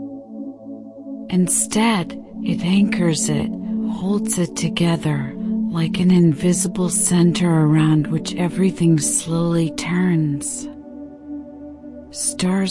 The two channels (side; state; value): both; identical; correlation 1.00